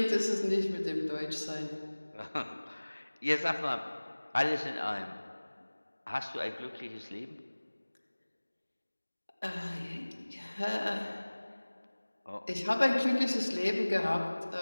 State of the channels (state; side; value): inverted; both; correlation -1.00